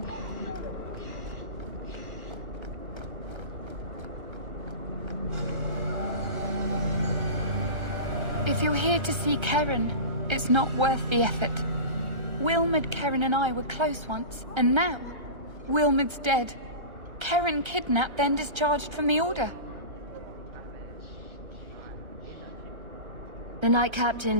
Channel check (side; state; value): left; late; 1.3 ms